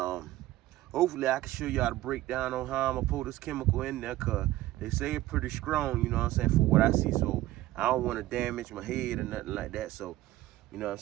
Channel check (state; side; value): quieter; left; 16.1 dB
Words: hopefully I can show y'all the breakdown on how I'm gonna pull this chemical in there, cause they say it's pretty strong, you know what I'm saying, for what I see. So I don't wanna damage my head or nothing like that. So, you know what I'm